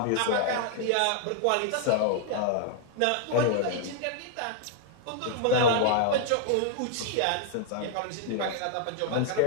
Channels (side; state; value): both; different; correlation 0.00